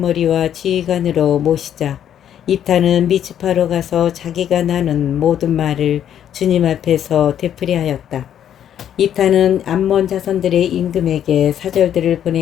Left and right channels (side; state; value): right; quieter; 10.0 dB